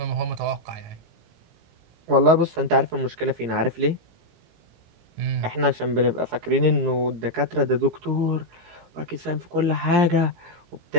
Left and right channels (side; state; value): left; late; 17 ms